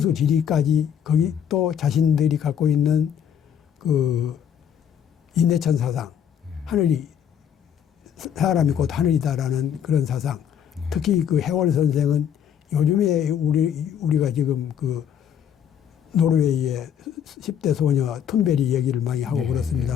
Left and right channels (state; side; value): quieter; right; 8.8 dB